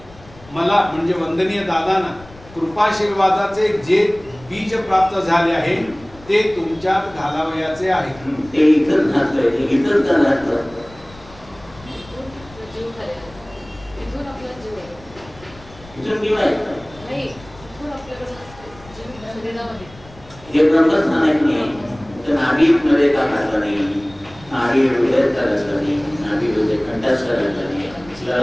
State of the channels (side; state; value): left; noise; rumble, 22 dB below the sound